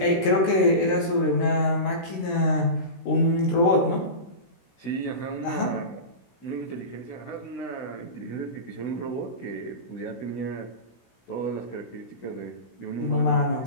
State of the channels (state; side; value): late; right; 16 ms